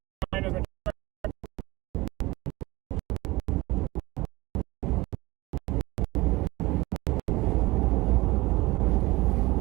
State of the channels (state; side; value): quieter; left; 20.8 dB